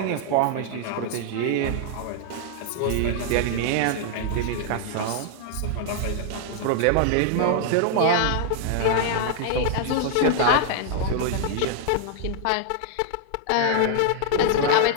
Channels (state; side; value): different; both; correlation 0.00